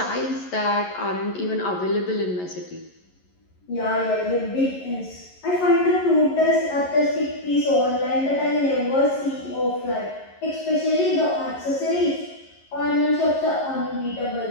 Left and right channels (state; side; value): late; right; 11 ms